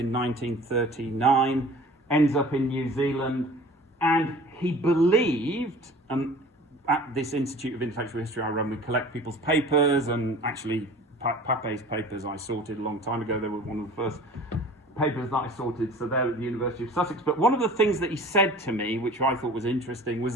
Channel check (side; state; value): both; normal; correlation 0.44